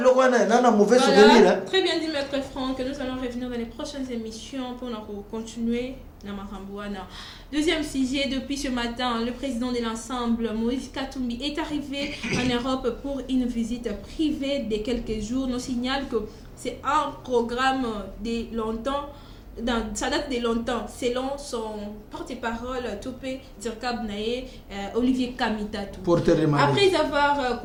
dans un mauvais souvenir. Très bien dit, Maître Franck. Nous allons revenir dans les prochaines émissions pour continuer. Deuxième sujet, depuis ce matin, le président de l'ensemble, Moïse Katumbi, est arrivé en Europe pour une visite privée de quelques jours. Nous signale que c'est un programme de longtemps. Ça date de longtemps, selon son porte-parole, Topé Dirkab Naye, Olivier Kamitatou. Après avoir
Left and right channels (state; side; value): identical; both; correlation 1.00